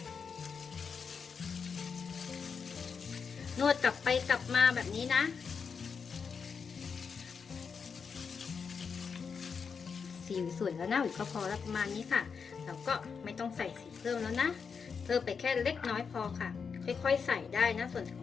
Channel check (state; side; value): quieter; right; 5.9 dB